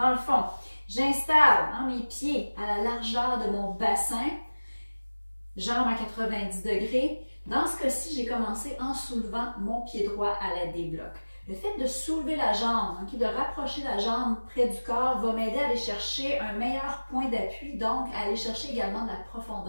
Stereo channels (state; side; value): inverted; both; correlation -1.00